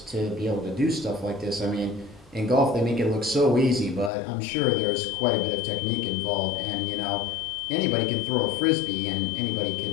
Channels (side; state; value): right; drops out; at 4.1 s